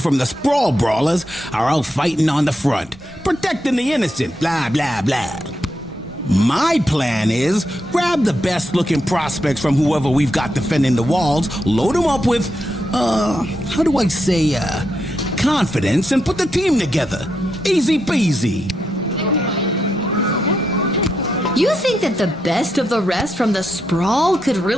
from the Sprawl Brawlers are out fighting on the front, protecting the innocent, blah, blah, blah. My plan is grab the best looking prospects from whoever we've got defending the walls, load them up with, how do I say, confidence, and put the team together. Easy peasy. You think that the best of the rest from the Sprawl could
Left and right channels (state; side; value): normal; both; correlation 0.83